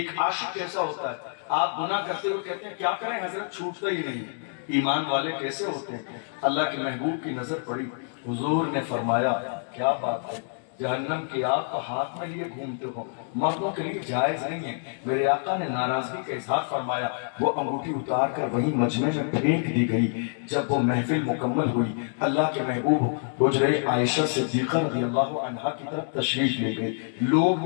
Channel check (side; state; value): right; silent; digital silence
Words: عاشق کیسا ہوتا ہے۔ آپ گناہ کرتے ہوئے کہتے ہیں کیا کریں حضرت، چھوٹتا ہی نہیں ہے۔ ایمان والے کیسے ہوتے ہیں؟ اللہ کے محبوب کی نظر پڑی، حضور نے فرمایا کیا بات ہے، جہنم کی آگ کو ہاتھ میں لیے گھومتے ہو، مردوں کے لیے جائز نہیں ہے۔ میرے آقا نے ناراضگی کا اظہار فرمایا، وہ انگوٹھی اتار کر وہیں مجمع میں پھینک دی گئی۔ جب وہ محفل مکمل ہوئی، اللہ کے محبوب حجرہ عائشہ صدیقہ رضی اللہ عنہا کی طرف تشریف لے گئے۔ لوگ